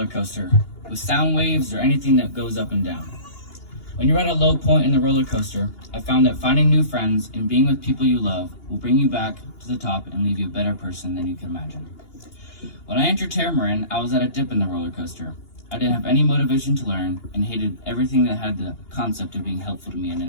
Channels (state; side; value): late; right; 2.8 ms